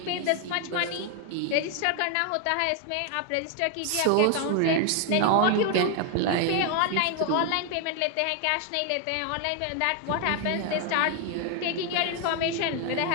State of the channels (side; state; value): both; different; correlation 0.00